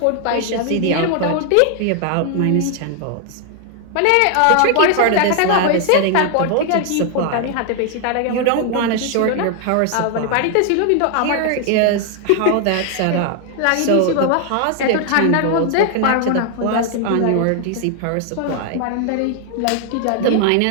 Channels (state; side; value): different; both; correlation 0.00